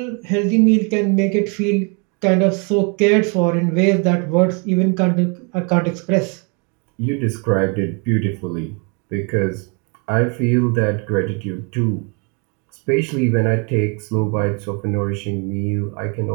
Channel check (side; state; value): left; quieter; 35.2 dB